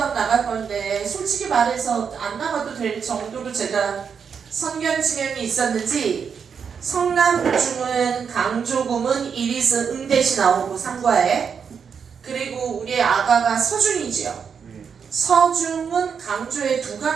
나갈 건데, 솔직히 말해서 안 나가도 될 정도로 제가 선견 지명이 있었는지, 성남중은 강조금은 이리스 응대시 나오고 상과에, 그리고 우리의 아가가 서중이지요. 서중은 강조에 두가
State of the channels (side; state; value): left; quieter; 6.6 dB